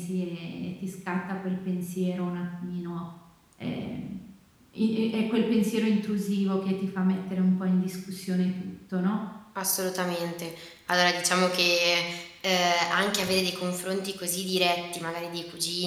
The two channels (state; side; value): identical; both; correlation 1.00